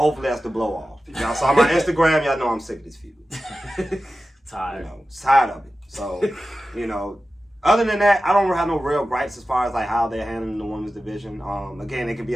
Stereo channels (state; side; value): normal; both; correlation 0.94